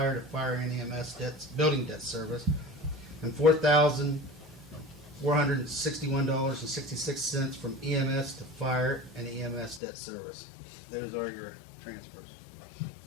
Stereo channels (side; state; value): right; drops out; at 9.8 s